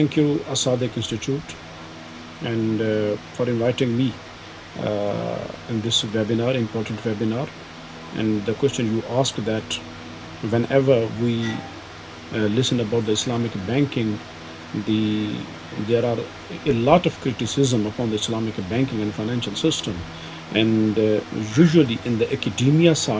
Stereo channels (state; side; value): identical; both; correlation 1.00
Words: you, Asadik Institute, and for inviting me in this webinar, important webinar. And the question you asked that whenever we listen about the Islamic banking, the there are a lot of criticism upon the Islamic banking and financial system, and usually in the academia